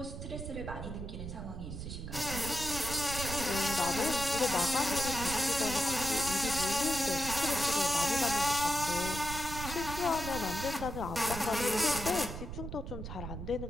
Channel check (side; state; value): right; noise; rumble, 7 dB below the sound